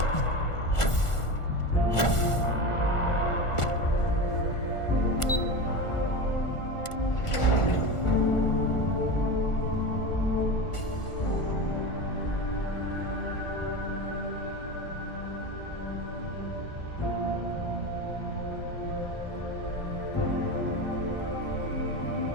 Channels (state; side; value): late; right; 1.4 ms